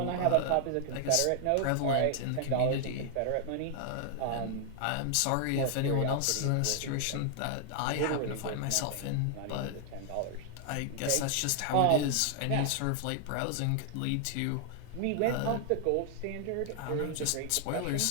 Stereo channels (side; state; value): both; different; correlation 0.00